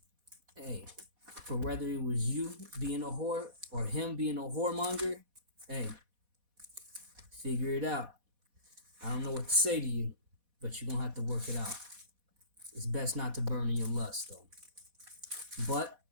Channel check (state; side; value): late; left; 4.1 ms